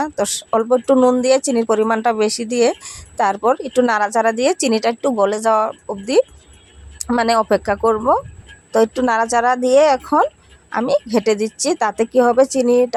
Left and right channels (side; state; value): both; identical; correlation 1.00